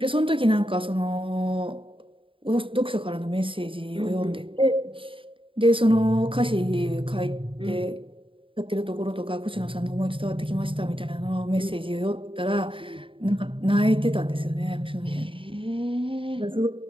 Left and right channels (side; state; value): left; late; 0.25 ms